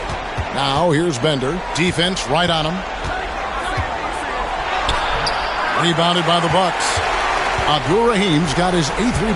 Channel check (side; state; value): both; identical; correlation 1.00